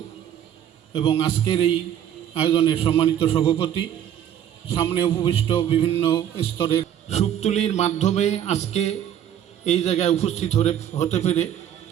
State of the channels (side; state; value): left; quieter; 10.3 dB